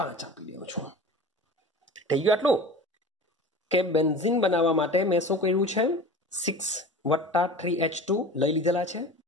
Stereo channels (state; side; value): normal; both; correlation 0.36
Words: આપી દઉં છું થઈ ગયું આટલું કે બેન્ઝીન બનાવવા માટે મેં શું કર્યું છે 6 + 3H2 લઈ લીધેલા છે